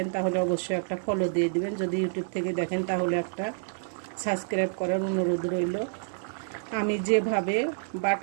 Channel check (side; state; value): left; silent; digital silence